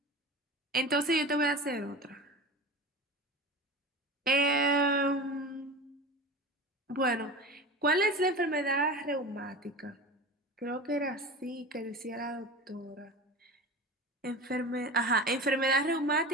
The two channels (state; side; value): normal; both; correlation 0.31